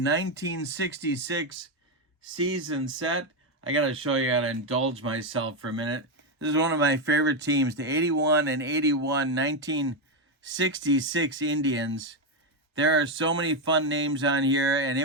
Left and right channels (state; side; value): normal; both; correlation 0.07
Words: season set. I got to show you how to indulge myself for a minute. This is one of my favorite teams, the 81 and 81 1966 Indians. There are so many fun names on here, and